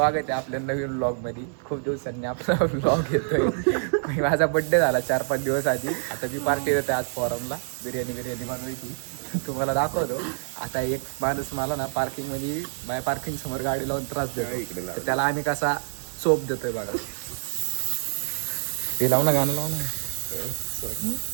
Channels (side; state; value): left; silent; digital silence